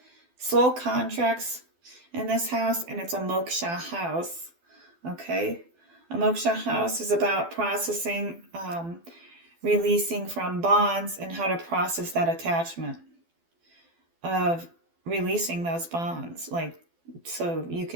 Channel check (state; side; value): late; left; 12 ms